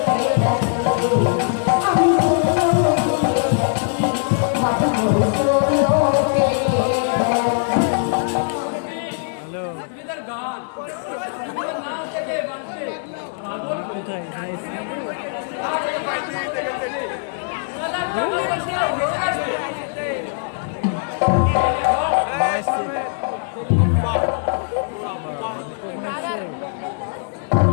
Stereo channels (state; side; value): silent; right; digital silence